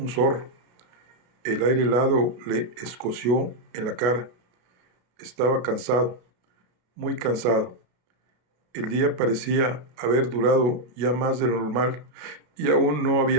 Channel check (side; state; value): left; late; 33 ms